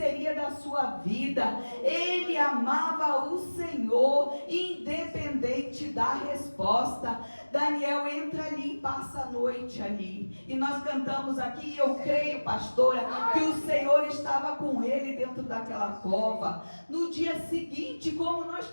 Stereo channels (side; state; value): both; inverted; correlation -1.00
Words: da sua vida. Ele amava o Senhor, independente da resposta. Daniel entra ali e passa a noite ali. E nós cantamos aqui, eu creio, pastora, que o Senhor estava com ele dentro daquela cova. No dia seguinte, como nós